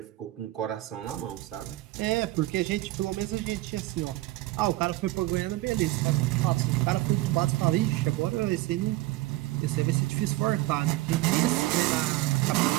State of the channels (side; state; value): left; quieter; 18.3 dB